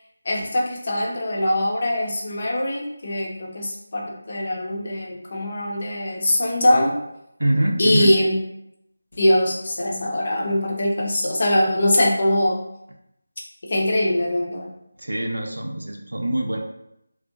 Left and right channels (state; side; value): inverted; both; correlation -0.94